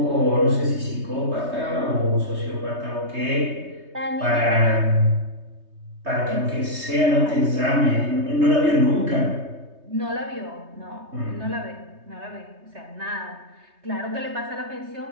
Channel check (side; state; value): left; late; 3.2 ms